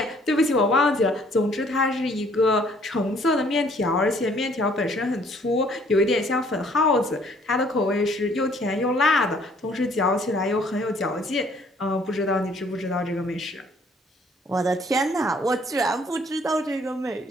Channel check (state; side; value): normal; both; correlation 0.61